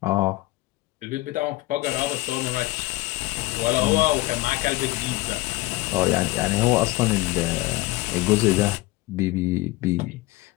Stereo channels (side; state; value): right; quieter; 19.0 dB